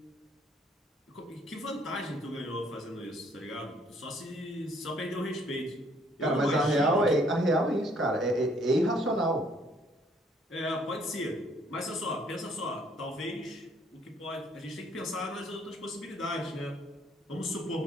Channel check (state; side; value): normal; both; correlation 0.63